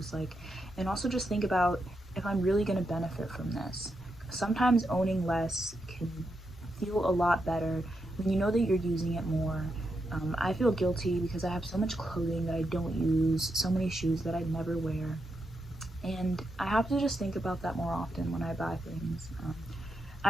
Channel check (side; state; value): both; normal; correlation 0.84